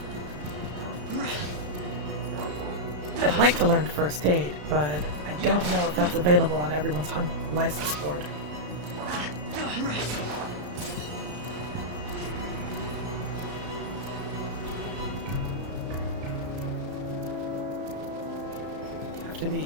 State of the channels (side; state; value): left; late; 34 ms